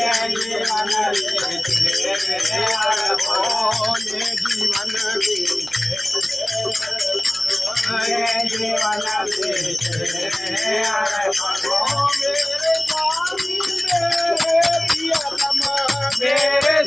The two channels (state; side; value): noise; right; hum, 23 dB below the sound